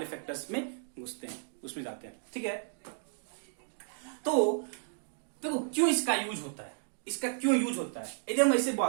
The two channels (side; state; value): left; silent; digital silence